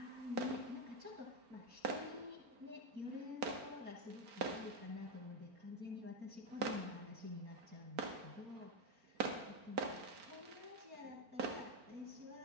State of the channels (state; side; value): late; left; 4.4 ms